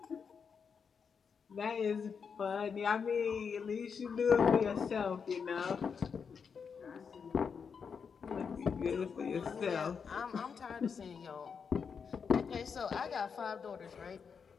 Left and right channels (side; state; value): right; quieter; 6.2 dB